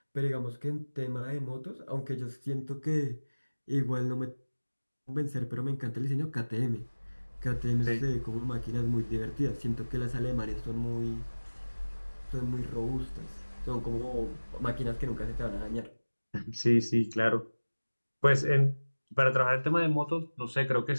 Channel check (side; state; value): both; inverted; correlation -1.00